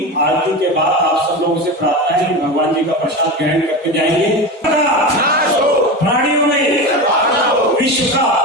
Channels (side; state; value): both; normal; correlation 0.23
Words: आरती के बाद आप सब लोगों से प्रार्थना है कि भगवान जी का प्रसाद ग्रहण करके जाएंगे। प्राणियों में विश्व का